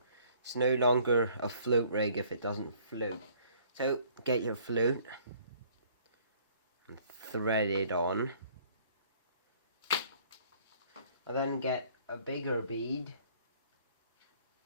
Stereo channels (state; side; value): inverted; both; correlation -0.58